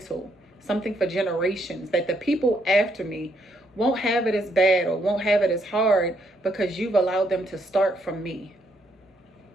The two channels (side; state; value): both; normal; correlation 0.73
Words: something for generations, that the people after me won't have it as bad or won't have it as hard because you've allowed them to start from me.